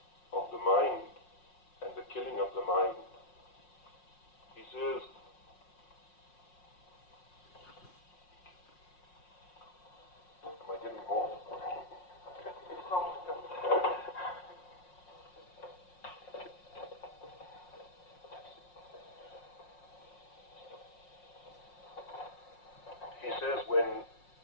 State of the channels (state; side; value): late; right; 5.6 ms